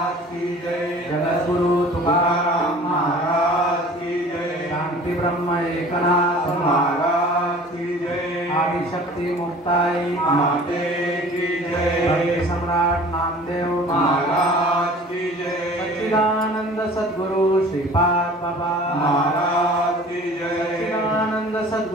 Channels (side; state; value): both; normal; correlation 0.45